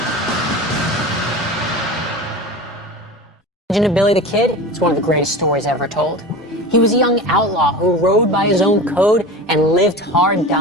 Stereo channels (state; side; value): normal; both; correlation 0.32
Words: Legend of Billy the Kid, it's one of the greatest stories ever told. He was a young outlaw who rode by his own code and lived hard,